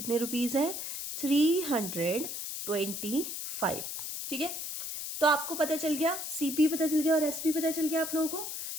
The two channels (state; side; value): noise; left; hiss, 5 dB below the sound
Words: रुपीज़ है, 325। ठीक है, तो आपको पता चल गया, सीपी पता चल गया और एसपी पता चल गया आप लोगों को।